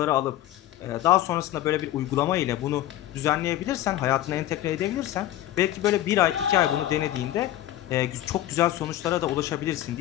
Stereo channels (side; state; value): right; quieter; 13.5 dB